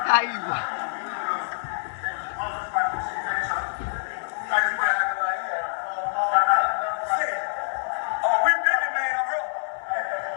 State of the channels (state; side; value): silent; right; digital silence